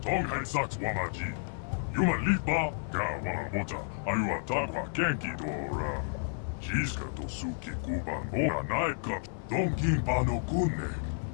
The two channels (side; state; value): right; silent; 57 dB below the other